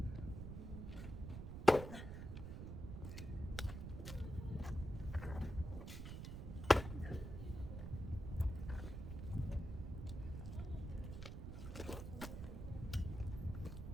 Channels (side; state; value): right; noise; rumble, 6 dB below the sound